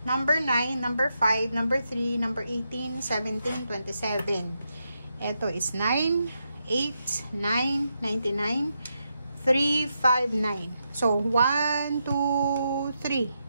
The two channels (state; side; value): inverted; both; correlation -0.84